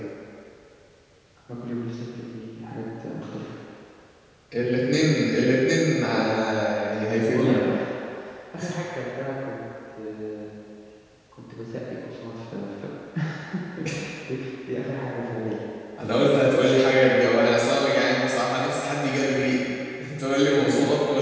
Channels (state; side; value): identical; both; correlation 1.00